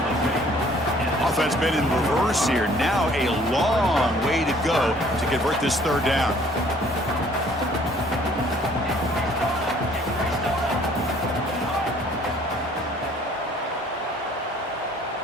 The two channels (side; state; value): both; normal; correlation 0.57